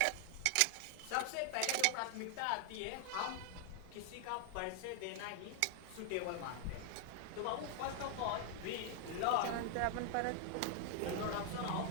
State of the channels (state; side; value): different; both; correlation 0.00